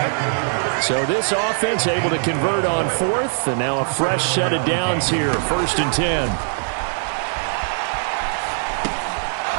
So this offense able to convert on 4th, and now a fresh set of downs here, 1st and 10.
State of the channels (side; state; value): left; silent; 65 dB below the other